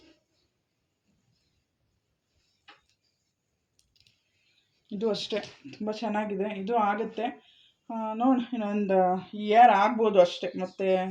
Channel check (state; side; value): identical; both; correlation 1.00